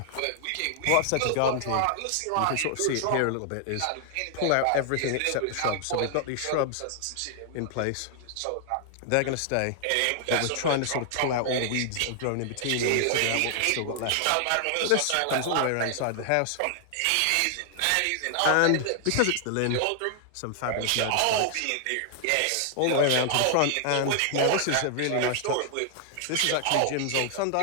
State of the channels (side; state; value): both; different; correlation 0.00